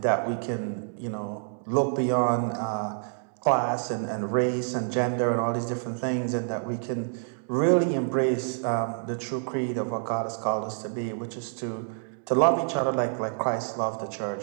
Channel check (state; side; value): silent; left; digital silence